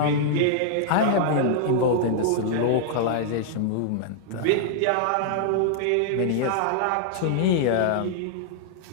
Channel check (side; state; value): both; different; correlation -0.01